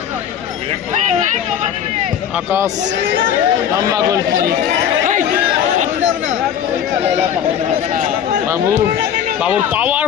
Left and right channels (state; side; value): quieter; right; 9.2 dB